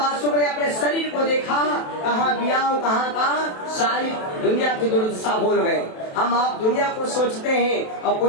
ने अपने शरीर को देखा, कहाँ बियाह कहाँ का, सारी दुनिया की दुर्दशा भूल गए। हम आप दुनिया को सोचते हैं और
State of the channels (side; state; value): right; late; 27 ms